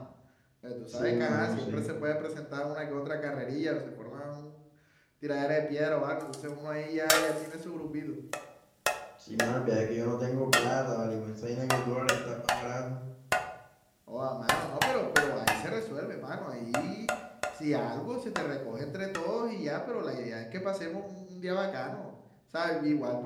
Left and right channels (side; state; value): both; identical; correlation 1.00